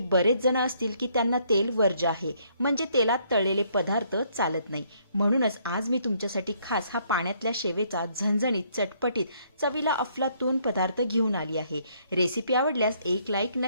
बरेच जण असतील की त्यांना तेल वर्ज्य आहे, म्हणजे तेलात तळलेले पदार्थ चालत नाही. म्हणूनच आज मी तुमच्यासाठी खास हा पाण्यातल्या शेवेचा झणझणीत, चटपटीत, चवीला अफलातून पदार्थ घेऊन आली आहे. रेसिपी आवडल्यास एक लाईक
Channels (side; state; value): both; inverted; correlation -0.67